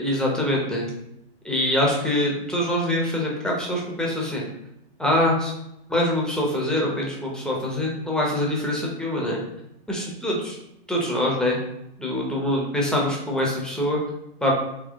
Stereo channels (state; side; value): normal; both; correlation 0.20